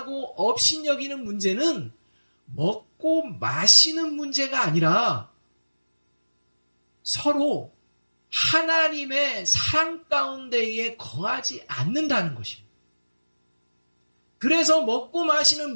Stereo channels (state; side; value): inverted; both; correlation -1.00